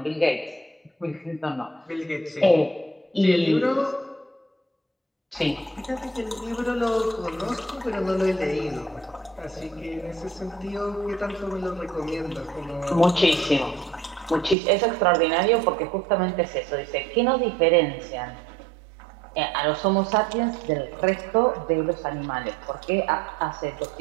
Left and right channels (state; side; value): drops out; left; at 14.6 s